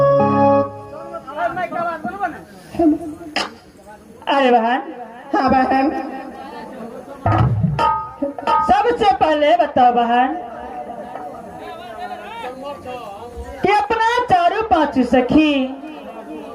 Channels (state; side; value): identical; both; correlation 1.00